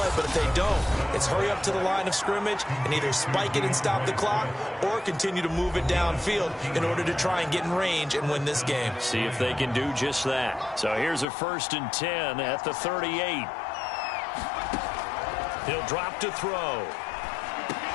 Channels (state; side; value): drops out; right; at 11.2 s